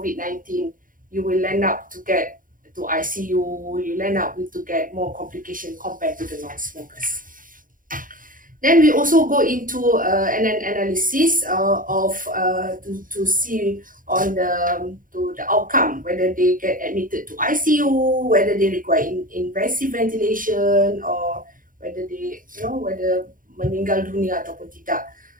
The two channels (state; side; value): late; left; 0.40 ms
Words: you will end up to get to ICU, you'll end up with to get more complication compared to the non-smokers. Then we also go into an analysis to see on the outcome, whether they get admitted to ICU, whether they require invasive ventilation, or whether they whether meninggal dunia ataupun tidak.